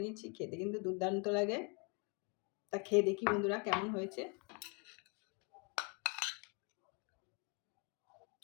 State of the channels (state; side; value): quieter; right; 32.4 dB